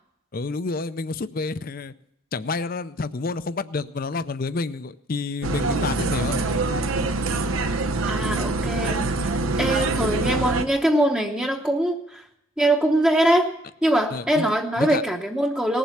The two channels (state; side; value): normal; both; correlation 0.63